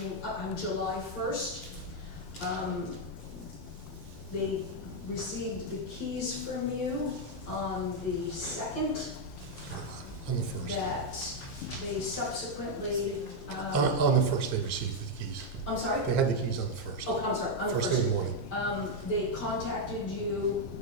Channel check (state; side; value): normal; both; correlation 0.01